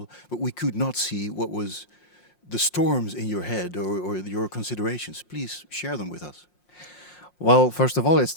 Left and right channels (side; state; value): right; late; 5.6 ms